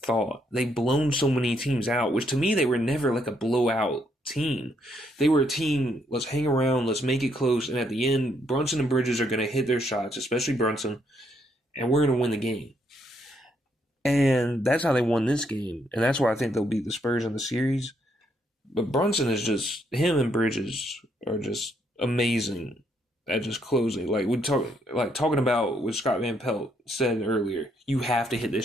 They've blown so many teams out, which to me, they were never like a blowout team. They were a team, let's hang around, let's make it close, and at the end, Brunson and Bridges are going to hit their shots, especially Brunson, and we're going to win the game. And that's how they won this game, and that's why I think they'll beat the Spurs in the series. But Brunson is just, him and Bridges are just amazing at just closing. Talking about what Scott Van Pelt said earlier, you have to hit this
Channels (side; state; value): both; normal; correlation 0.73